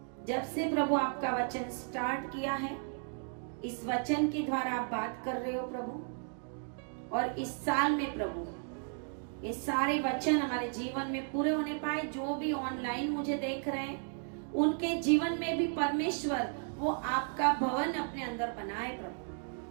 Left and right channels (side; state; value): left; silent; 55 dB below the other